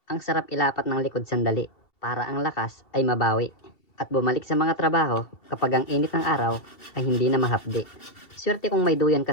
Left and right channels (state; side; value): late; right; 2.7 ms